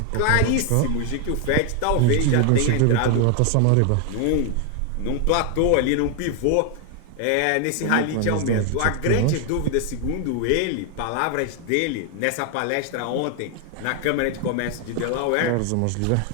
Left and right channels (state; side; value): different; both; correlation 0.00